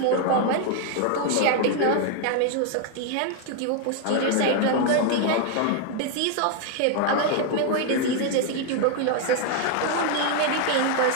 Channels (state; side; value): different; both; correlation 0.01